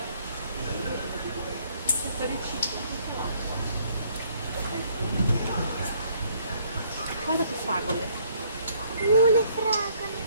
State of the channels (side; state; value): both; inverted; correlation -0.66